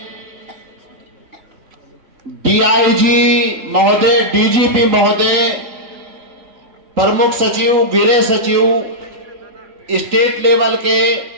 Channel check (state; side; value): late; left; 3.9 ms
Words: डीआईजी महोदय, डीजीपी महोदय, प्रमुख सचिव, गृह सचिव, स्टेट लेवल के,